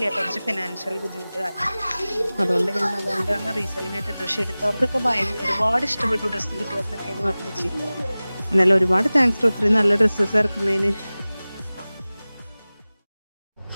കുറച്ച് ഫിനാൻഷ്യൽ ബുദ്ധിമുട്ട് കാരണം. അതുകൊണ്ടാണ് റീസെല്ലിംഗ് ആയിട്ട് ഡ്രസ്സ് എടുത്തവർക്കൊക്കെ ഒരുപാട് ഇഷ്ടപ്പെട്ടു. ഡ്രസ്സ് കിട്ടിയവർക്കൊക്കെ എന്ന് പറഞ്ഞു. എന്നാലും ഒരുപാട് താങ്ക്സ് ഒത്തിരി നല്ല ഡ്രസ്സസ് ഇറക്കുന്നതിന്.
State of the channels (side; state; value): both; inverted; correlation -0.98